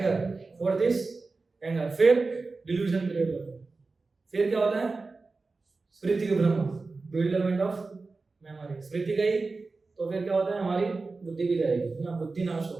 Fourth is anger. फिर डिल्यूजन क्रिएट होता है। फिर क्या होता है? स्मृति के भ्रम, bewilderment ऑफ मेमोरी। स्मृति गई तो फिर क्या होता है? हमारी बुद्धि भी जाएगी ना, बुद्धि नाश हो,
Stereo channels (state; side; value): quieter; left; 3.8 dB